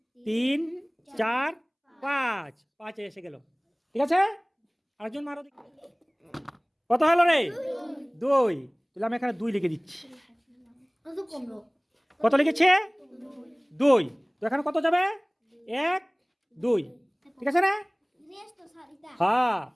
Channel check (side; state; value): both; identical; correlation 1.00